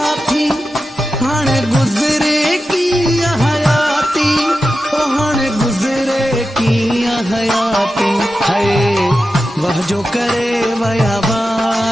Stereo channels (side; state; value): both; normal; correlation 0.91